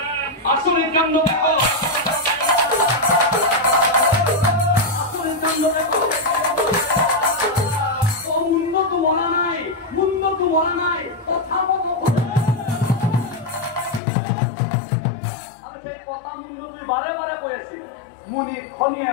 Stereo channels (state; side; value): drops out; right; at 14.0 s